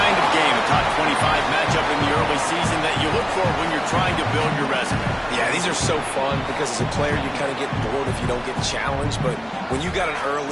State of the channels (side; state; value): both; identical; correlation 1.00